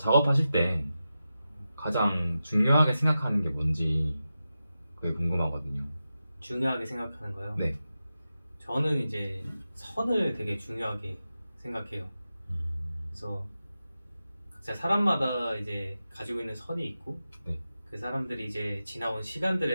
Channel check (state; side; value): inverted; both; correlation -0.92